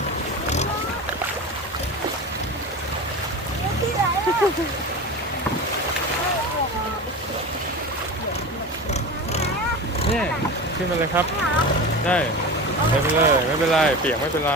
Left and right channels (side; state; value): both; normal; correlation 0.29